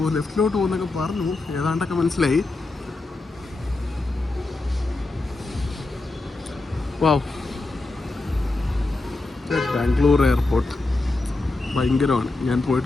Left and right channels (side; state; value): right; quieter; 3.1 dB